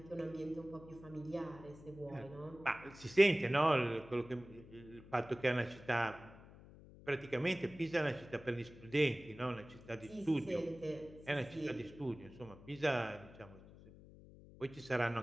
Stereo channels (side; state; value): left; noise; hum, 19 dB below the sound